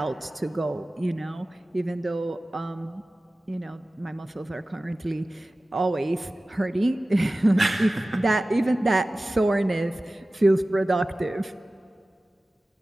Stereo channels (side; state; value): both; normal; correlation 0.97